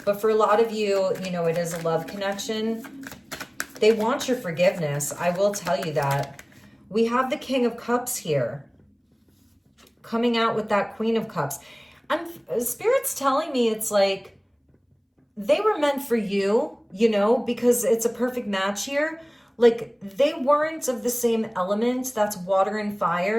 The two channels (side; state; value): both; identical; correlation 1.00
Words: But for a lot of you, you know, it is a love connection. They want your forgiveness. I will tell you that. We have the King of Cups here coming out with that Queen of Cups. Spirit's telling me it's like they were meant for you, you know, because it's a perfect match here. Like they weren't of the same element. That's water and